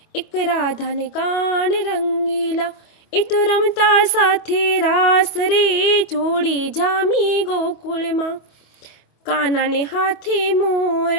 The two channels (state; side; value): late; right; 25 ms